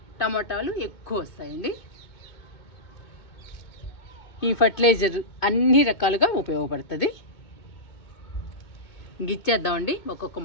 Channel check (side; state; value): right; late; 2.2 ms